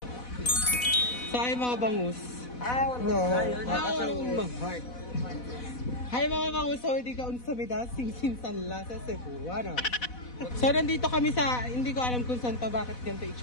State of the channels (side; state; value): right; late; 4.1 ms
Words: Hi mga bangus. Mahal. Hi mga bangus, so hindi ka unsa mida singsin la sa Cebu, ano? So nandito kami sa, hindi ko alam kung saan to, bakit ganito